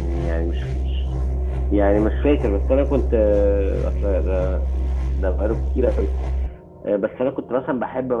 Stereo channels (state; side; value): identical; both; correlation 1.00